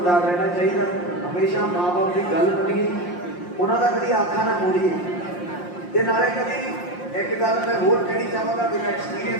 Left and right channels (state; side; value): late; right; 5.7 ms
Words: ਰਹਿਣਾ ਚਾਹੀਦਾ, ਹਮੇਸ਼ਾ ਮਾਂ ਬਾਪ ਦੀ ਗੱਲ ਮੰਨੀਏ, ਉਹਨਾਂ ਦਾ ਕਦੀ ਆਖਾ ਨਾ ਮੋੜੀਏ। ਤੇ ਨਾਲੇ ਕਦੀ ਇੱਕ ਗੱਲ ਮੈਂ ਹੋਰ ਕਹਿਣੀ ਚਾਹਾਂਗਾ, ਮੇਰਾ